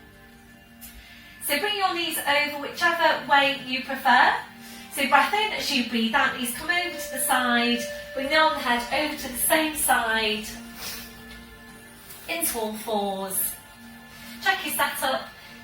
So bring your knees over whichever way you prefer. So breath in as you breathe out, knees come over to the side, bring the arm and head over to the same side, into all fours. Check your setup,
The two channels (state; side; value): identical; both; correlation 1.00